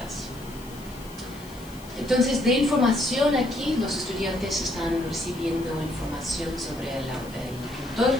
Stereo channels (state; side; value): noise; left; hiss, 21 dB below the sound